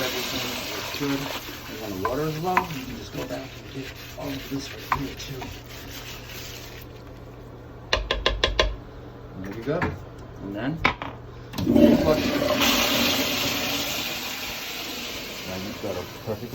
it's good. And when the water is low, you can just go back and get all of this right here too. And there you go. And then, flush. Now you've got a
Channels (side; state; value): both; identical; correlation 1.00